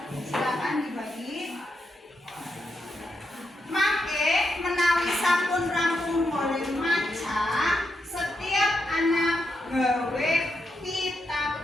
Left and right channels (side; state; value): both; normal; correlation 0.84